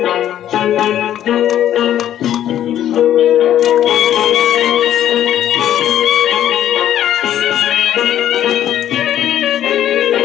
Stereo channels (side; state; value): right; quieter; 11.3 dB